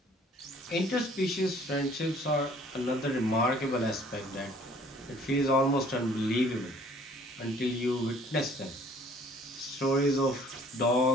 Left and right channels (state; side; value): normal; both; correlation 0.56